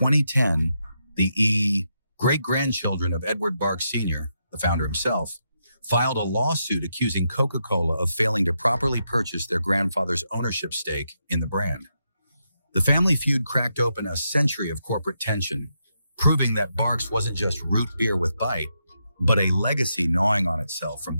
the great-grandchildren of Edward Barks Sr., the founder himself, filed a lawsuit accusing Coca-Cola of failing to properly purchase their grandfather's ownership stake in the brand. The family feud cracked open a century of corporate tension, proving that Barks wasn't just root beer with bite, but a legacy gnawing on itself from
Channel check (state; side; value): inverted; both; correlation -0.82